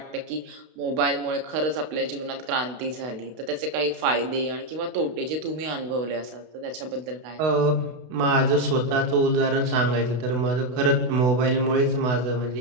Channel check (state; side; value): late; left; 32 ms